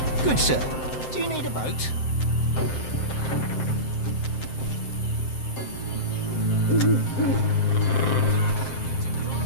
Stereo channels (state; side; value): late; right; 7.7 ms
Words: Good sir. Do you need a boat?